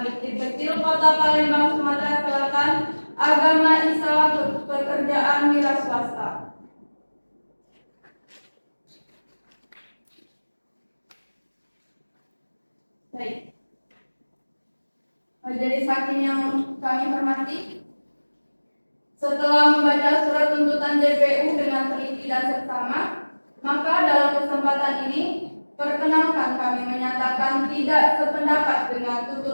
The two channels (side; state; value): both; inverted; correlation -1.00